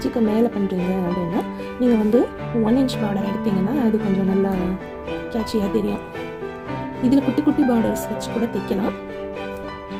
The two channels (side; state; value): both; identical; correlation 1.00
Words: மேலே பண்ணுறீங்க அப்படின்னா நீங்கள் வந்து 1 இன்ச் பார்டர் எடுத்தீங்கன்னா அது கொஞ்சம் நல்லா கேட்சியாக தெரியும். இதில் குட்டி குட்டி பார்டர்ஸ் வச்சு கூட தைக்கலாம்.